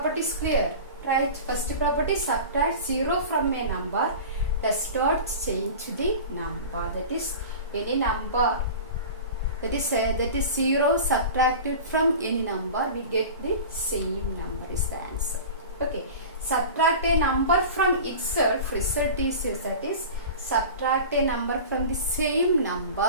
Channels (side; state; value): both; inverted; correlation -0.35